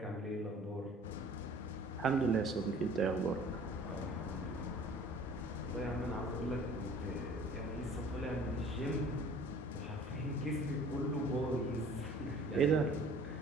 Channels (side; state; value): both; normal; correlation 0.49